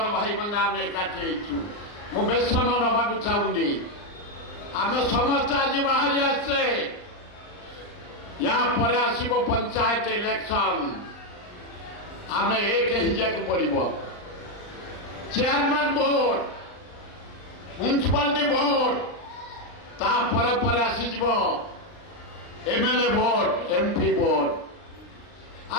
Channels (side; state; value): right; late; 39 ms